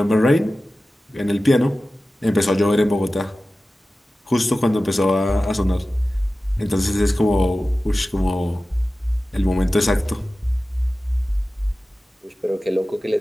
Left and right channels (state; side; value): normal; both; correlation 0.95